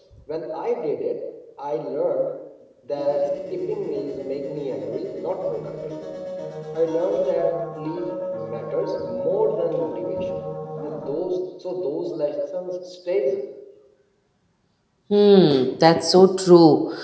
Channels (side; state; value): both; identical; correlation 1.00